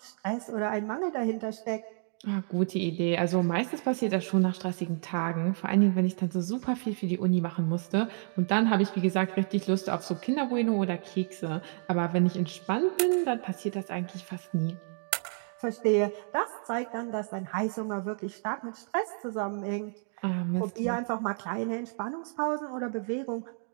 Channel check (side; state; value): left; silent; 58 dB below the other